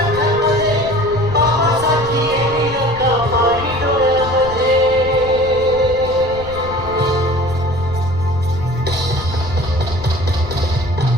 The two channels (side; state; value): left; noise; rumble, 12 dB below the sound